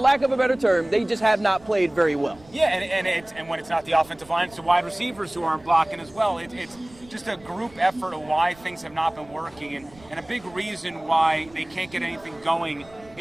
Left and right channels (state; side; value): noise; right; rumble, 25 dB below the sound